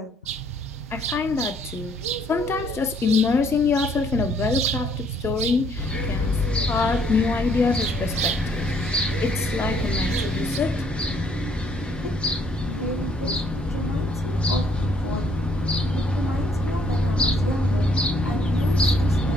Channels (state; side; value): normal; both; correlation 0.65